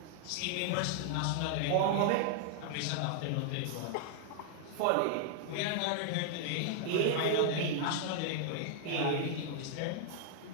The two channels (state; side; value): different; both; correlation 0.00